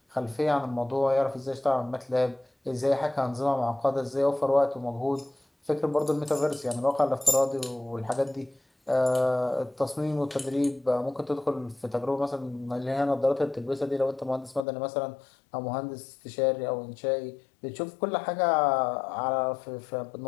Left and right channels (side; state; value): right; drops out; at 14.7 s